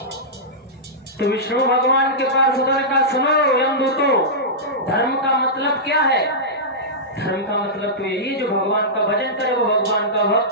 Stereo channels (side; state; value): both; normal; correlation -0.13